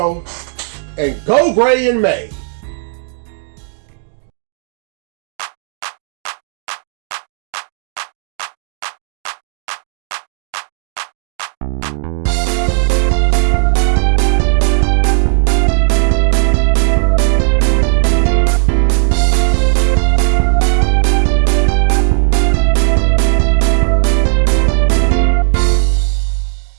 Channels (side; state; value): left; silent; digital silence